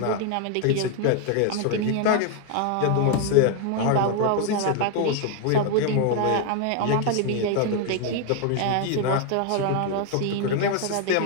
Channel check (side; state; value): both; different; correlation 0.01